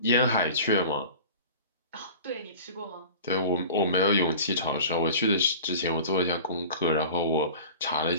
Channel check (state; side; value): inverted; both; correlation -0.39